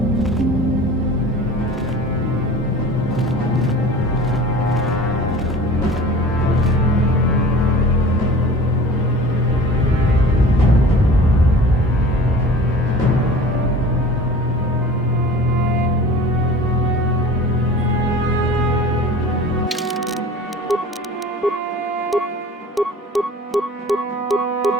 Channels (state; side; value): normal; both; correlation 0.41